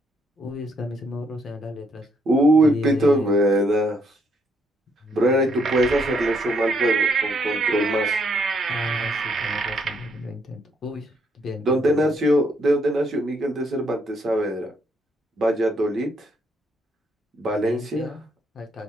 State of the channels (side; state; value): both; normal; correlation 0.72